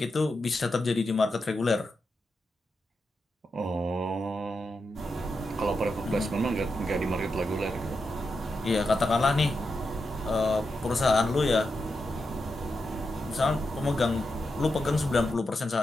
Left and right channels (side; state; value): both; normal; correlation 0.87